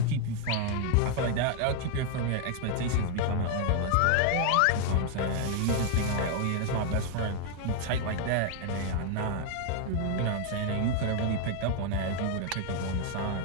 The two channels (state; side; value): different; both; correlation 0.01